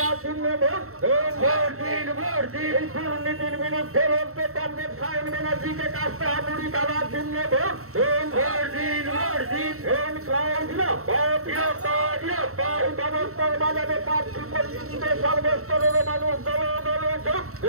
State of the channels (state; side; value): late; left; 0.63 ms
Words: জন্য দুর্নীতির বিরুদ্ধে লড়তে কংগ্রেস সায়ন ব্যানার্জিকে কাছে হাতুড়ি খেলার জন্য ব্যবস্থার বাজারে প্রার্থী পরিস্থিতিতে সর্বস্তরের মানুষ দলে দলে